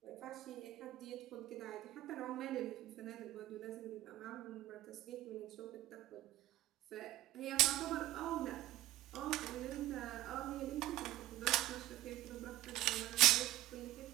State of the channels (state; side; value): quieter; left; 15.8 dB